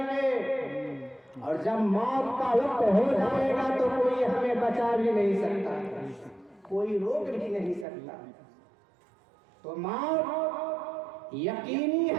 گے، اور جب موت کا وقت ہو جائے گا تو کوئی ہمیں بچا بھی نہیں سکتا، کوئی روک بھی نہیں سکتا۔ تو موت یقینی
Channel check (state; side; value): drops out; left; at 7.9 s